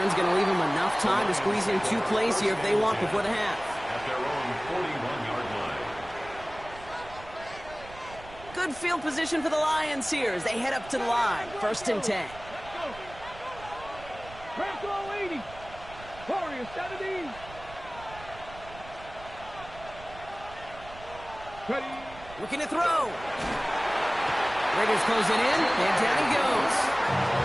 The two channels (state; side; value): noise; right; rumble, 18 dB below the sound